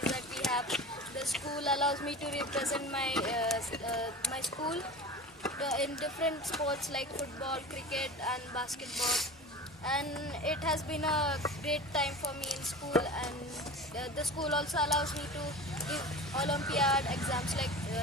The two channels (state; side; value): normal; both; correlation 0.34